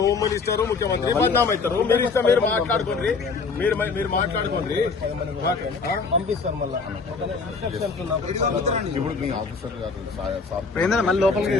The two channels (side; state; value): right; quieter; 4.6 dB